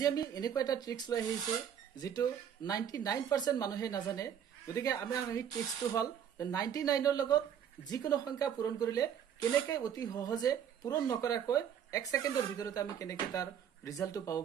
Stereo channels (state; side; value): quieter; left; 8.9 dB